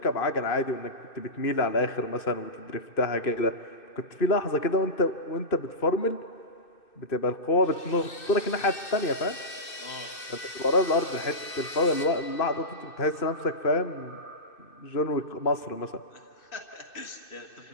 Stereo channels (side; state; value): right; late; 2.6 ms